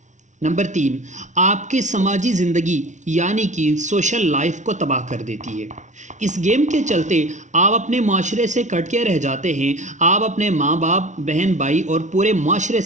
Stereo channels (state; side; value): late; left; 0.35 ms